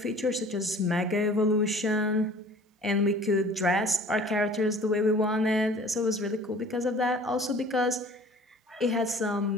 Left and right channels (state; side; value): normal; both; correlation 0.48